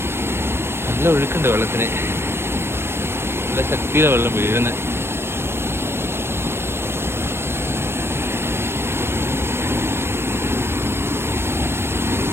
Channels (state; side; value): late; left; 0.12 ms